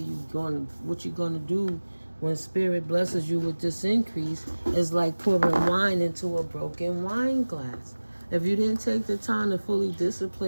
what you're going to do when Spirit blesses you with this increase, it's like pouring wine into a broken wine glass. If you didn't take the time to fully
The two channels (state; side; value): inverted; both; correlation -1.00